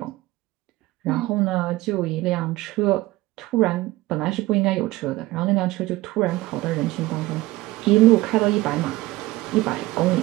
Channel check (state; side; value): quieter; left; 18.3 dB